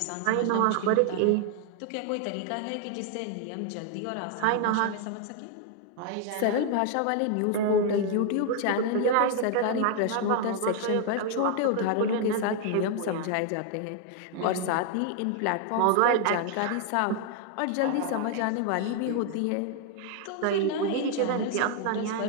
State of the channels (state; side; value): different; both; correlation 0.00